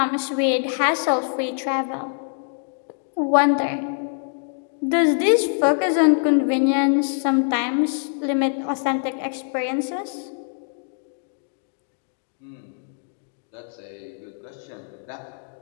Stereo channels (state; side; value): silent; right; digital silence